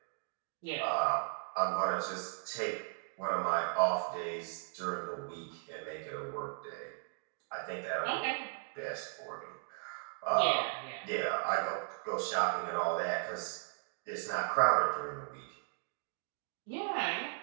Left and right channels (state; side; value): quieter; left; 38.6 dB